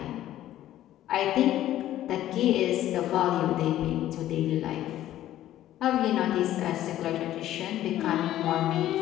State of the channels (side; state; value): right; quieter; 13.2 dB